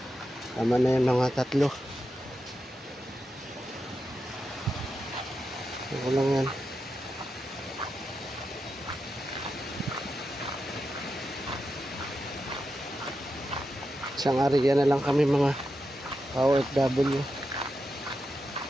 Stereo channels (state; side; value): normal; both; correlation 0.88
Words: Tama na yung mga tatlo. Ako lang yan. Isang area na lang kami mga ka-OFW.